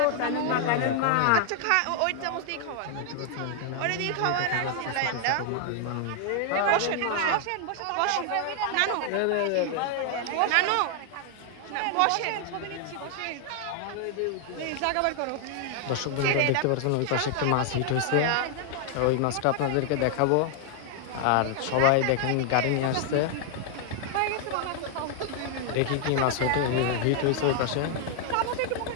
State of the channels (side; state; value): both; different; correlation 0.00